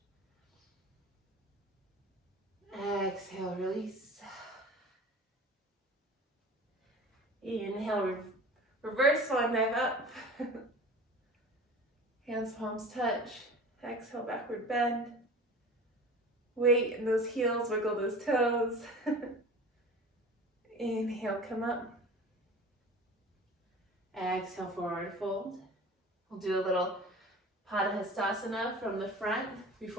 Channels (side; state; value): both; normal; correlation 0.39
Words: Exhale, release. Inhale, reverse swan dive up. Hands, palms touch. Exhale, backward bend. Weight in those heels, wiggle those toes. Inhale, come up. Exhale, forward fold. We'll do a little Padahastasana from the front